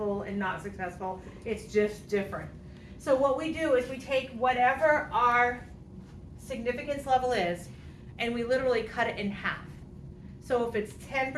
and not successful, it's just different. So what we do is we take whatever our significance level is and we literally cut it in half. So if it's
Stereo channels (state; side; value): identical; both; correlation 1.00